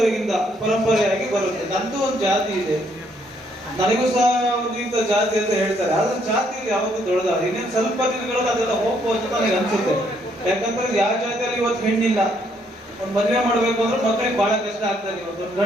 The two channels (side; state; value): both; normal; correlation 0.70